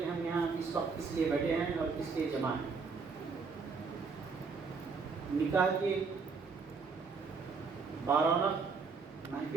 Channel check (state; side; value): quieter; left; 4.9 dB